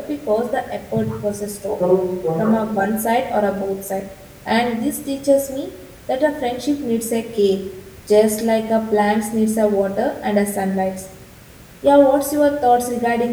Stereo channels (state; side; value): identical; both; correlation 1.00